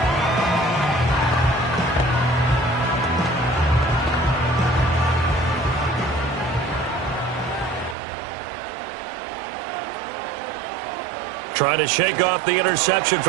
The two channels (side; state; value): left; drops out; at 8.0 s